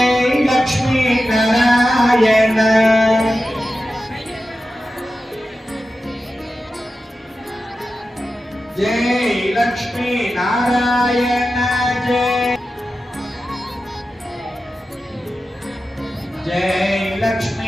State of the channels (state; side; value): normal; both; correlation 0.92